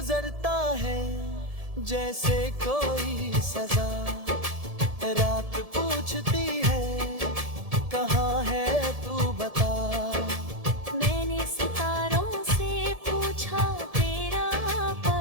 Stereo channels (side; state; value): left; late; 1.7 ms